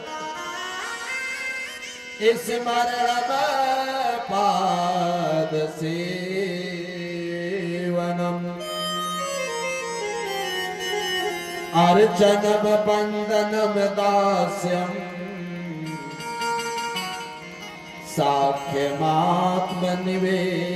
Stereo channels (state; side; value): identical; both; correlation 1.00